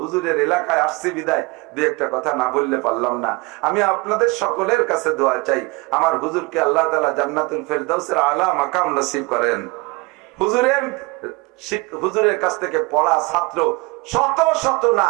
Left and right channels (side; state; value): left; quieter; 25.4 dB